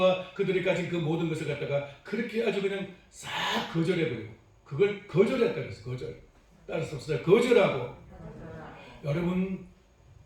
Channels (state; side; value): identical; both; correlation 1.00